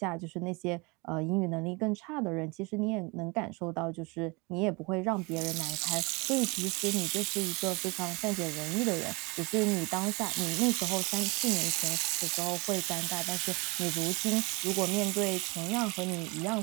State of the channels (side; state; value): left; quieter; 27.7 dB